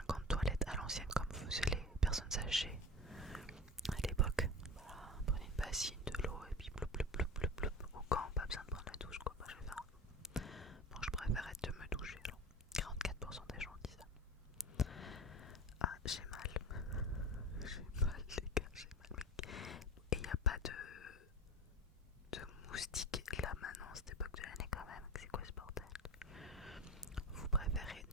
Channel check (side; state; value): both; normal; correlation 0.31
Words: gant de toilette à l'ancienne comme faisaient les personnes âgées à l'époque, voilà, prenez une bassine, de l'eau et puis ploup ploup ploup ploup ploup au gant, pas besoin de prendre la douche quoi. Moi je vais faire. Bon, je préfère être de me doucher alors. 44% des gens disent ça. Ah, j'ai mal. J'ai mal les gars, j'ai mal. Et il n'y a pas de moustiques là maintenant, cette époque de l'année quand même. C'est quoi ce bordel? Vous préférez